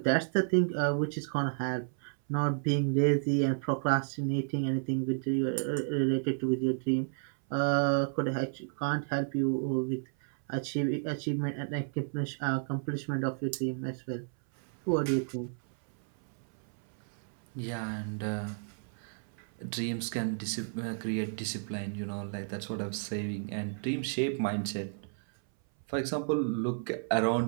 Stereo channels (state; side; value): silent; left; 56 dB below the other